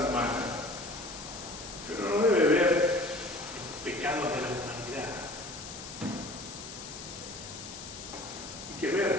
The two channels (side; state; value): left; noise; hiss, 11 dB below the sound